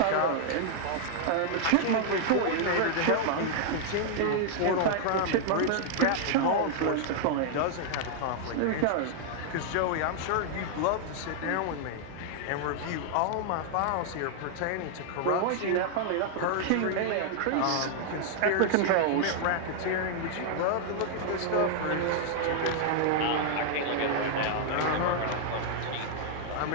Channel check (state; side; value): different; both; correlation -0.01